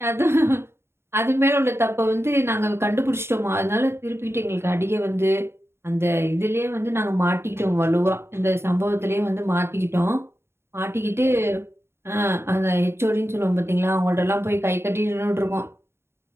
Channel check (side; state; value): left; late; 0.12 ms